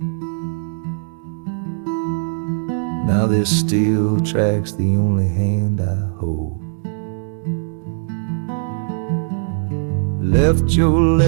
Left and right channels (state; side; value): silent; left; digital silence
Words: Now there's steel tracks, the only hand I hold. Left your